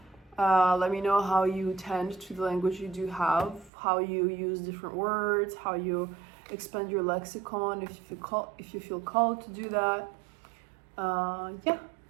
Let me know how you tend to the language you do have, how you use different words, how you expand your lexicon if you feel called to do that. Yeah.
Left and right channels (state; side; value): drops out; left; at 3.7 s